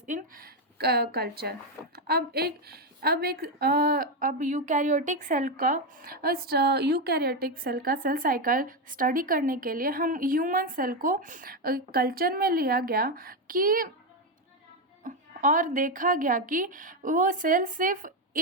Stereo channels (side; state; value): both; normal; correlation 0.08